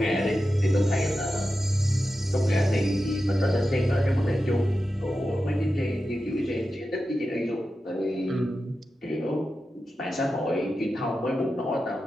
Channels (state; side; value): normal; both; correlation 0.91